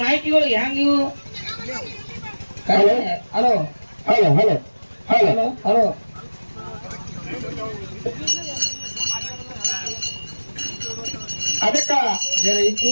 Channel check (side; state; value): both; inverted; correlation -1.00